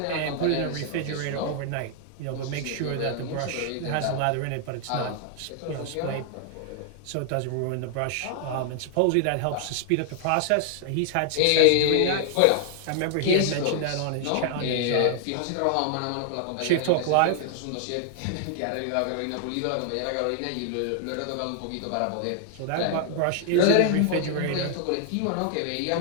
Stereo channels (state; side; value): different; both; correlation 0.00